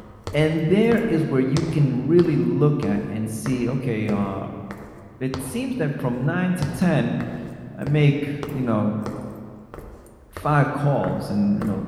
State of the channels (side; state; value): both; identical; correlation 1.00